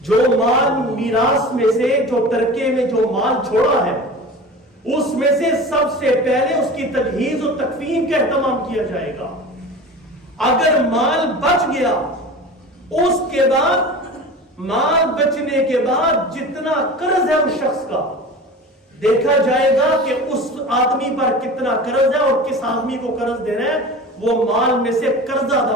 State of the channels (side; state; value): both; normal; correlation 0.35